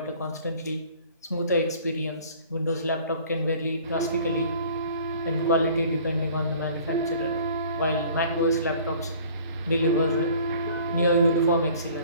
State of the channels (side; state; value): both; inverted; correlation -0.50